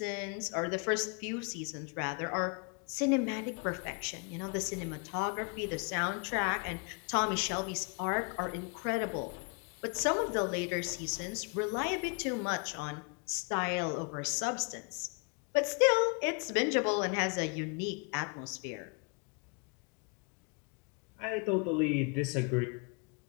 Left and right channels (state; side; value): quieter; right; 34.3 dB